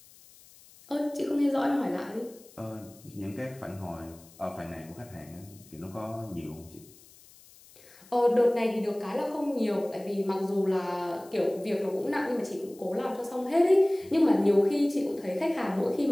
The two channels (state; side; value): noise; left; hiss, 24 dB below the sound